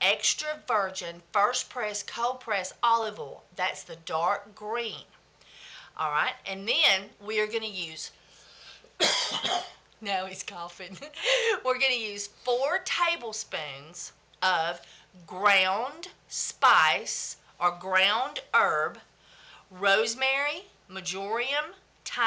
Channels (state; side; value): identical; both; correlation 1.00